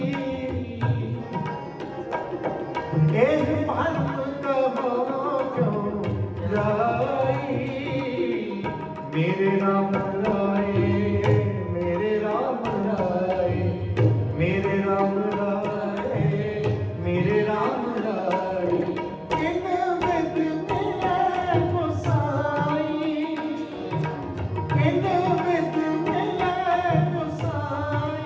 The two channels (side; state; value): both; identical; correlation 1.00